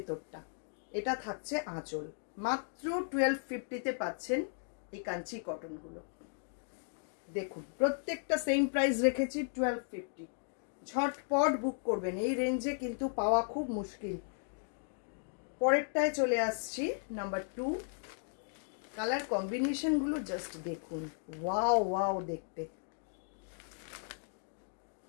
এটা থাকছে আঁচল। মাত্র 1250-তে পাচ্ছেন এই কাঞ্চি কটন গুলো। দেখুন প্রত্যেকটা সেম প্রাইস রেখেছি 1250। ঝটপট বুক করবেন, এই রেঞ্জে কিন্তু পাওয়া খুব মুশকিল। পরেরটায় চলে আসছি, নাম্বার 2। কালার কম্বিনেশন গুলো জাস্ট দেখুন, ওয়াও ওয়াও দেখতে।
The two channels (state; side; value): silent; right; digital silence